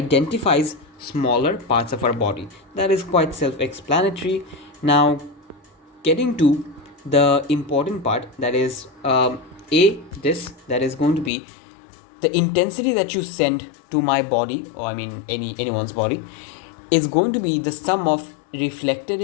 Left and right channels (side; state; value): right; drops out; at 11.3 s